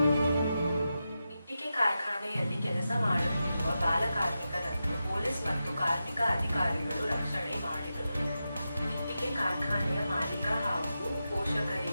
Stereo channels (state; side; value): inverted; both; correlation -0.90